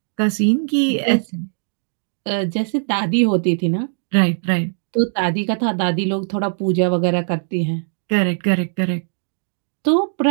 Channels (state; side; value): silent; left; digital silence